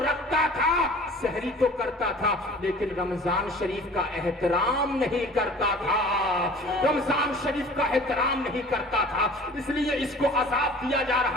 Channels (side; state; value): both; normal; correlation 0.45